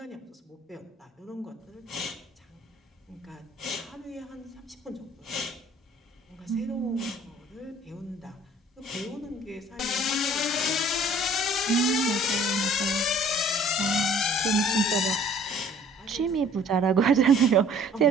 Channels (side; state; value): both; normal; correlation 0.54